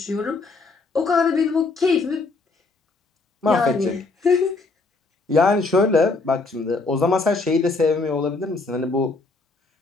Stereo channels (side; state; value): right; quieter; 3.8 dB